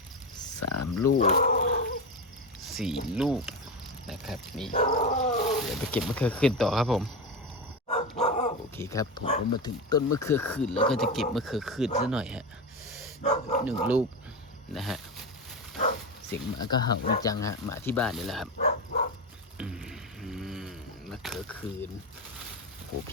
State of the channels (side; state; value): both; normal; correlation 0.18